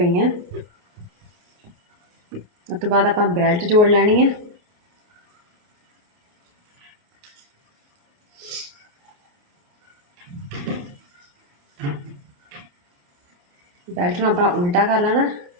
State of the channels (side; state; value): left; late; 28 ms